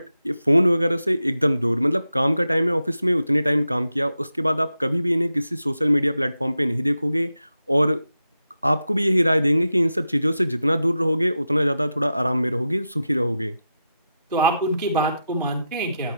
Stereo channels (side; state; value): both; inverted; correlation -0.89